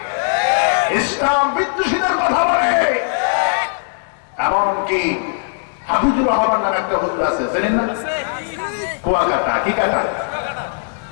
ইসলাম বিদ্বেষীদের কথা বলে। এমনকি হাফিজুর রহমান নামে একটা হুজুর আছে, জানেন না? কুয়াকাটা, কি কাটা,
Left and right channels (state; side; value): silent; right; digital silence